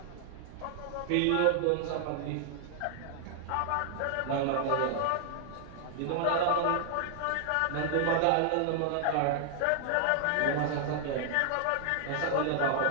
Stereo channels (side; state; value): both; different; correlation 0.00